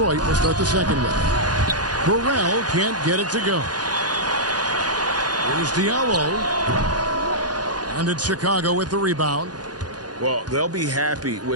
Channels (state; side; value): late; left; 0.69 ms